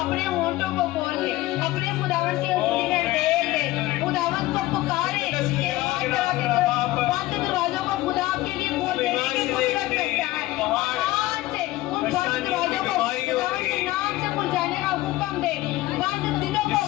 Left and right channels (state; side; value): quieter; right; 17.6 dB